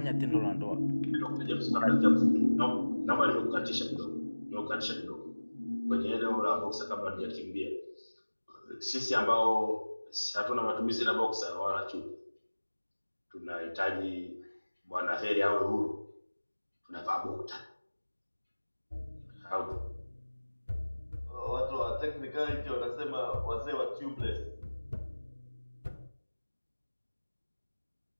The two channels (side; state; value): both; inverted; correlation -1.00